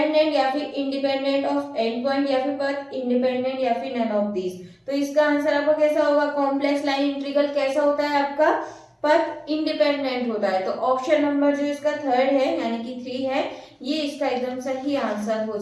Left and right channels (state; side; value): identical; both; correlation 1.00